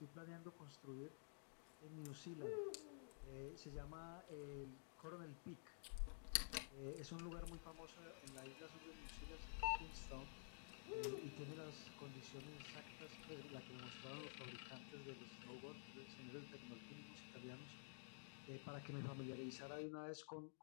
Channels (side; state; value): right; silent; digital silence